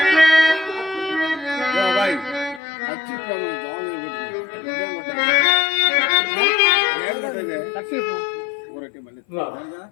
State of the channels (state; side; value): drops out; right; at 2.6 s